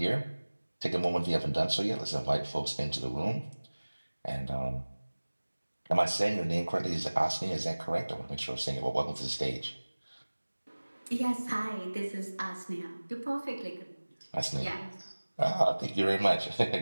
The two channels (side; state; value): both; inverted; correlation -1.00